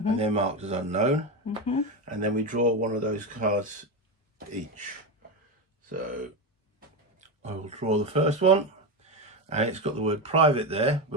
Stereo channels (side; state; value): both; normal; correlation 0.15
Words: they're marked as unknown. And then we draw one of those cards each. So I will draw the first one, and it's got the word private there,